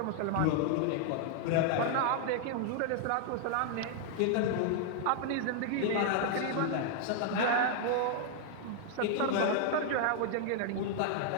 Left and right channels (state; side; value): different; both; correlation 0.00